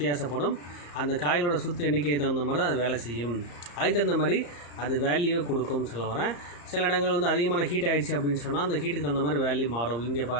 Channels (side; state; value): right; late; 34 ms